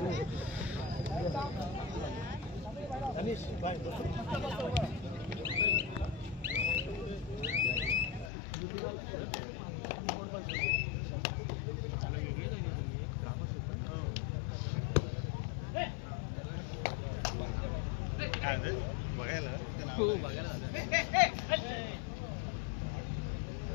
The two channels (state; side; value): drops out; right; at 8.3 s